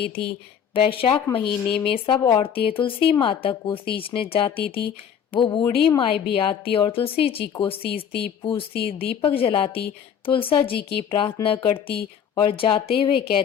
थी। वैशाख महीने में सब औरतें तुलसी माता को सींचने जाती थी। वो बूढ़ी माई भी आती और तुलसी जी को सींचती, पूजती, दीपक जलाती, तुलसा जी की प्रार्थना करती और जाते हुए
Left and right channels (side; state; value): right; quieter; 8.2 dB